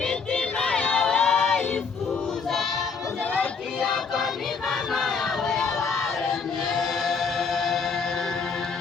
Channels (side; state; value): right; quieter; 5.3 dB